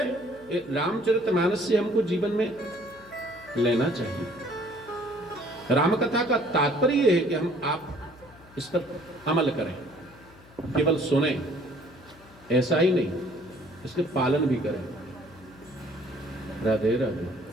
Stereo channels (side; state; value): left; noise; hum, 24 dB below the sound